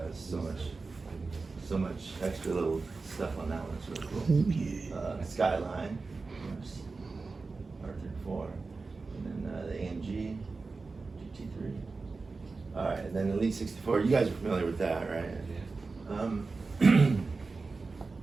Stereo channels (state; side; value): quieter; left; 4.0 dB